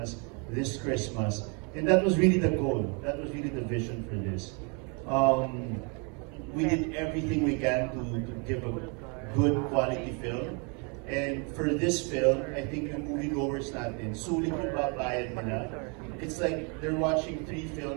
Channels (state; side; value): quieter; left; 34.7 dB